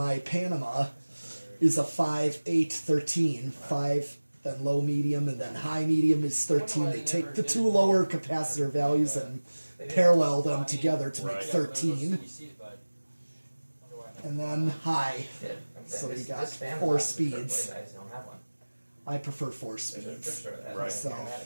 Panama is a 5, 8, 13. 5, then low medium, and then high medium is 13. They take the 2 lower capacitor values and parallel them together to make 13. And then high. So you got 4 speeds. I prefer 4 speeds. Right. So,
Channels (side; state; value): both; inverted; correlation -1.00